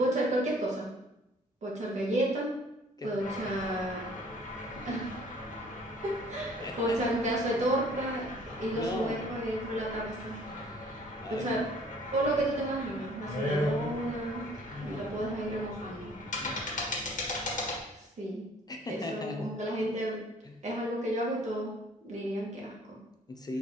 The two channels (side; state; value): both; normal; correlation 0.55